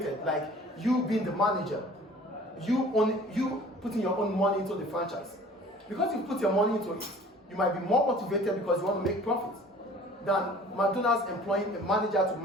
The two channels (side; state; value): both; normal; correlation 0.48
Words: like you being the manager, you putting your own money into the franchise. Because you put your money into it, you might be more motivated because you want to make profits than McDonald's employing a manager to